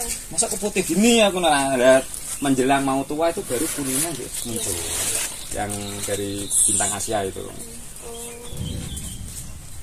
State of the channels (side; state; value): both; identical; correlation 1.00